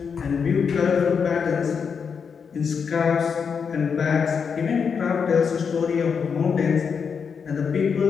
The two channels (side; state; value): right; quieter; 6.2 dB